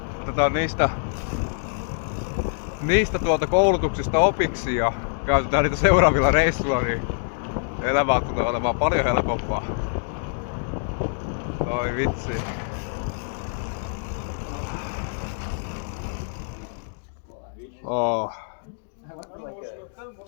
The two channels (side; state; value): right; silent; digital silence